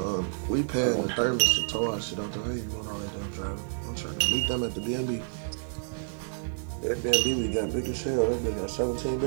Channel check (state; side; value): silent; left; digital silence